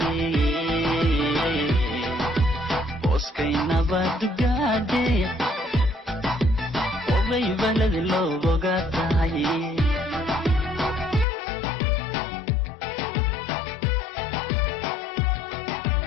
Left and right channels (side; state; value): right; drops out; at 11.2 s